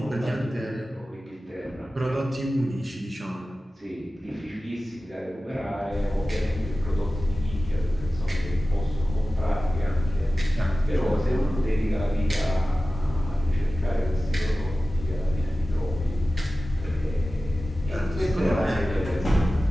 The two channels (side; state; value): both; normal; correlation 0.96